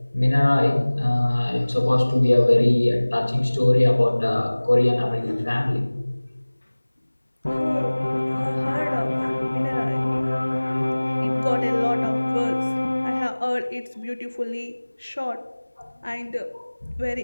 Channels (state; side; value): inverted; both; correlation -1.00